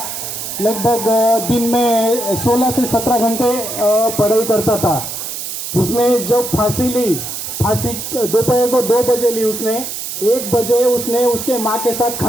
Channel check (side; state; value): right; noise; hiss, 6 dB below the sound